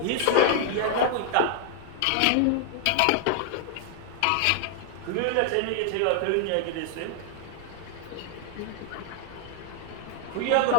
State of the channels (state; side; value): different; both; correlation 0.00